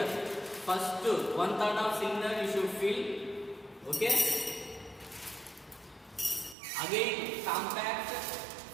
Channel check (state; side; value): drops out; left; at 6.6 s